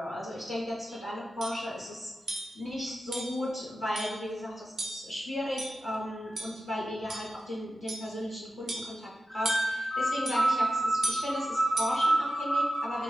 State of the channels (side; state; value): both; normal; correlation 0.92